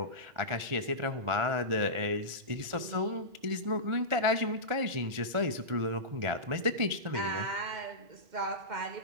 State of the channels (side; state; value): left; late; 1.5 ms